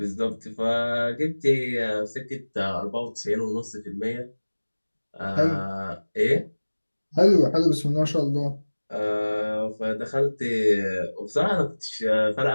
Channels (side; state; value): both; inverted; correlation -1.00